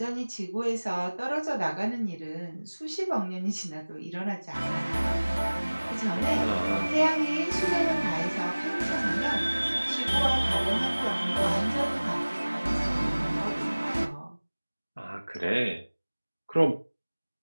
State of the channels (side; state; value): both; inverted; correlation -1.00